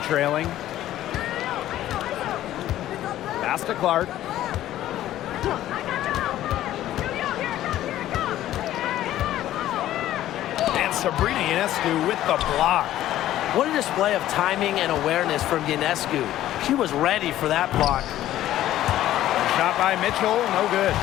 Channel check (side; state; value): right; quieter; 13.4 dB